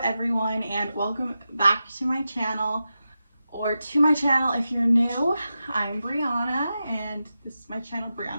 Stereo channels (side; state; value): both; inverted; correlation -0.91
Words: everyone, and welcome back to my channel, or to my channel if you're new. I'm Brianna, and this is my channel,